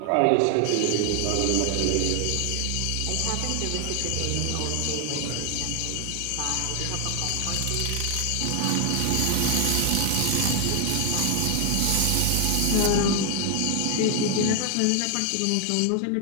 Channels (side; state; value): both; different; correlation 0.00